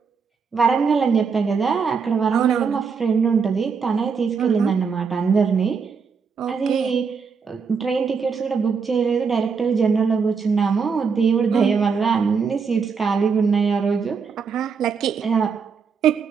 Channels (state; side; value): quieter; left; 5.7 dB